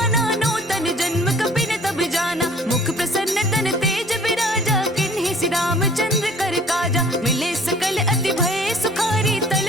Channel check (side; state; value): both; normal; correlation 0.52